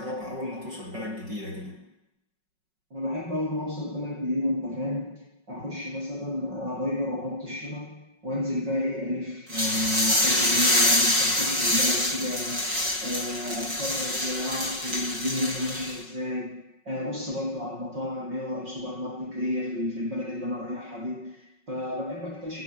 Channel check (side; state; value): left; late; 5.4 ms